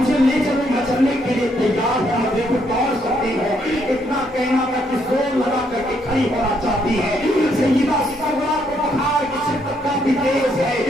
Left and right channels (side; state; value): both; normal; correlation 0.73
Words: ले चलो मैं चलने के लिए तैयार हूँ, मैं देखो दौड़ सकती हूँ। इतना कहना था कि जोर लगा करके खड़ी होना चाहती है। सैयदा सुगरा को बुखार की शिद्दत काफी तेज है,